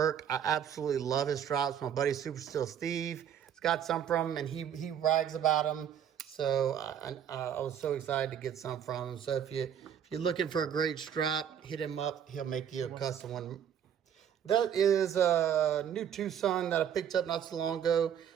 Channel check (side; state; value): left; quieter; 9.0 dB